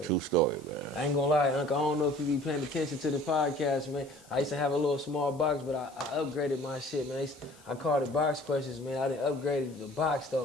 True story, man. I ain't gonna lie, Uncle. I don't know if you be paying attention to the podcast, man. I used to have a little small box, but I upgraded my shit, man. I called it box questions, man. I done upgraded the box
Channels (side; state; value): left; noise; hiss, 26 dB below the sound